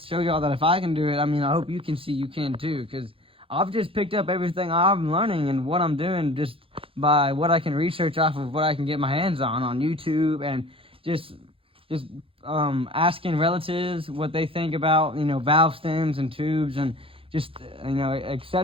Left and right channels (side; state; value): left; late; 0.27 ms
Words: show y'all that if I can do it, I mean, I hope you can see you can too, because I've just picked up everything I'm learning and what I'm doing just by what I can research off of what I can get my hands on YouTube, and just asking relatives what they think about, you know, valve stems and tubes and just, you know,